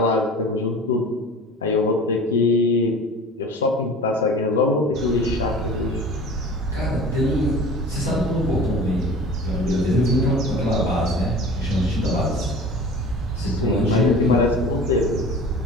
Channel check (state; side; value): normal; both; correlation 0.39